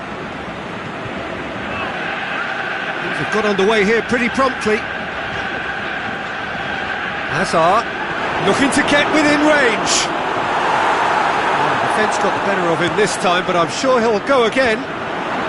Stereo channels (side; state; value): both; identical; correlation 1.00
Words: Things have got underway here pretty promptly. Hazard looking to get within range. Defence got the better of him this time, but I'm sure he'll go again.